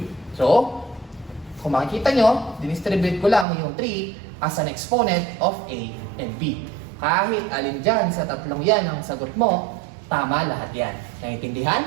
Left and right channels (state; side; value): drops out; left; at 3.5 s